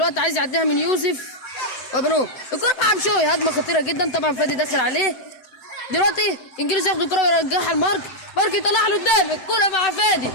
عايز يعديها من يوسف وابانوب. الكره مع بشوي، هجمه خطيره جدا طبعا فادي داخل عليه. دلوقتي انجيلوس ياخد الكره ويرجعها لمارك، يطلعها لقدام. الكره مع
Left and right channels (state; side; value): late; right; 7.8 ms